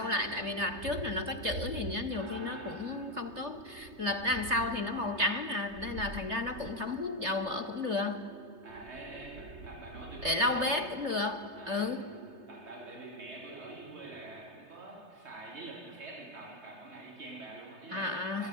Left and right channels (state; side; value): late; left; 3.3 ms